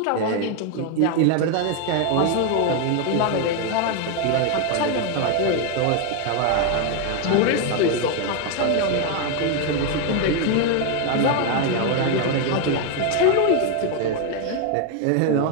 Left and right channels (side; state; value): both; different; correlation 0.01